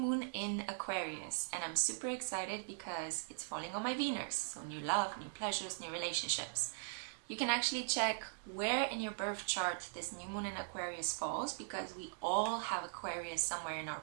in Aquarius and I'm super excited because it's falling on my Venus. So new love, new pleasures, new relationships. You can actually check where in your birth chart this new moon in Aquarius falls because we all have Aquarius somewhere in our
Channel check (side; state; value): left; silent; digital silence